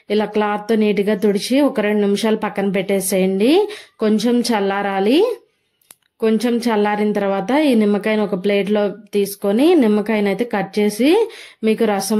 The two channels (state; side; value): identical; both; correlation 1.00